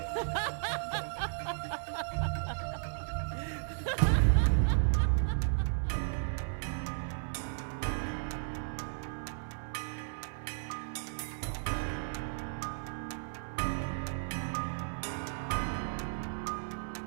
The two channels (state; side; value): silent; left; 55 dB below the other